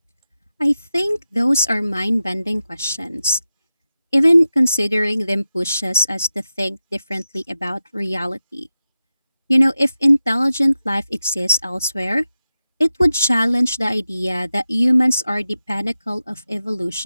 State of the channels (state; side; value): inverted; both; correlation -0.92